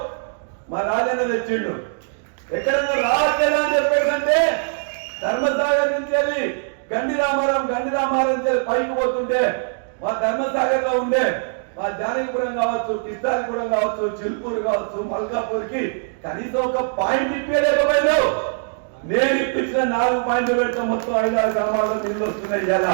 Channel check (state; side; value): silent; left; digital silence